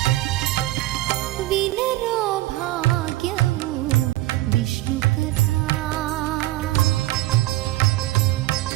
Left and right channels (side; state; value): left; quieter; 17.4 dB